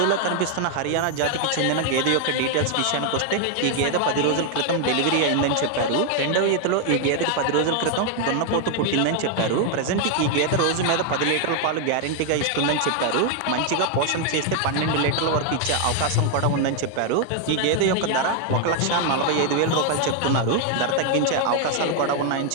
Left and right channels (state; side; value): different; both; correlation 0.00